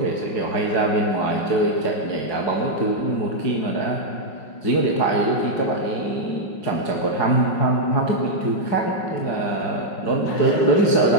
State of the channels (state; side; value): late; right; 5.5 ms